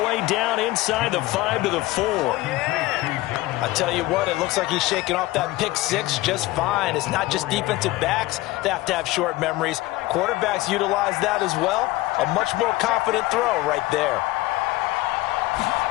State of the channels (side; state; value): right; quieter; 18.7 dB